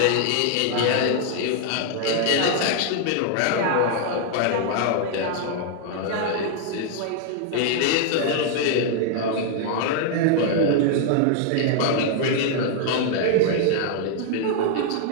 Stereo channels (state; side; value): different; both; correlation 0.00